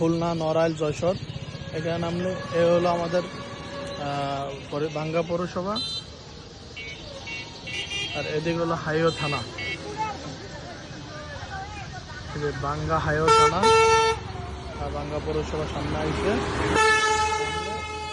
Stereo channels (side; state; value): both; identical; correlation 1.00